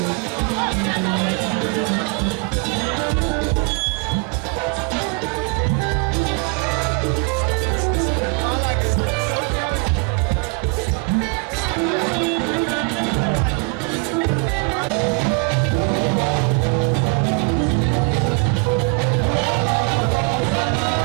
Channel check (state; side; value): quieter; left; 31.1 dB